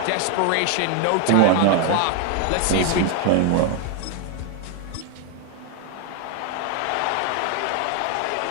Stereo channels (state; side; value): different; both; correlation 0.01